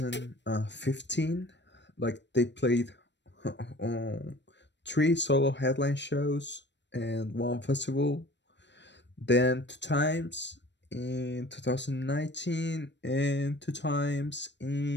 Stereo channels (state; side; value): late; right; 0.52 ms